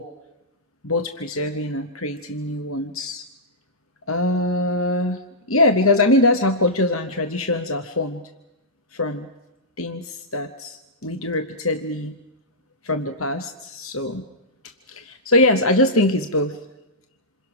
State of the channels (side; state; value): both; normal; correlation -0.14